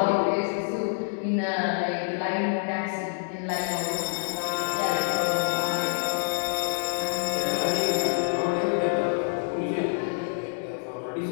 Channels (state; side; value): silent; right; digital silence